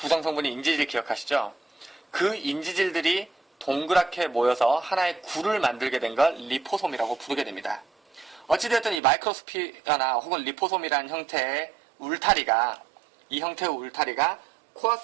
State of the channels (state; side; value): drops out; left; at 9.0 s